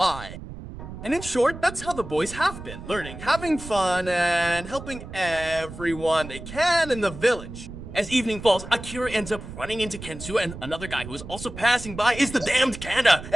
And in short, that's how the boys have been, learning, having fun, and helping everyone they can in the village. As evening falls, Akira ends up running into Kensu, and another guy who is also passing by is the damned Kanda.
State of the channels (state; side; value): noise; right; rumble, 12 dB below the sound